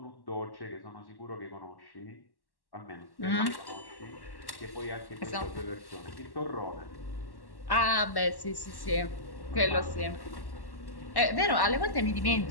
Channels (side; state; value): right; late; 1.1 ms